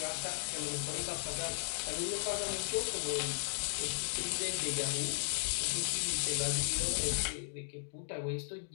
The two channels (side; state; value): right; silent; digital silence